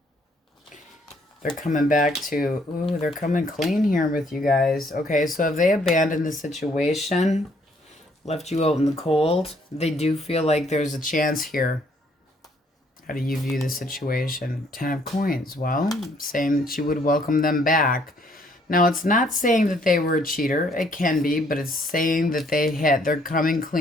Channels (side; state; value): both; normal; correlation 0.66